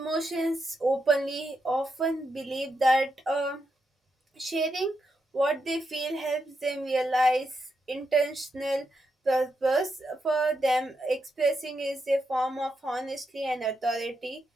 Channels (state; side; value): normal; both; correlation 0.83